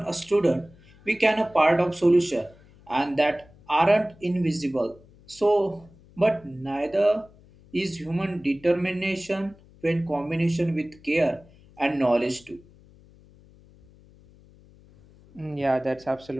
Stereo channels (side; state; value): left; noise; hum, 26 dB below the sound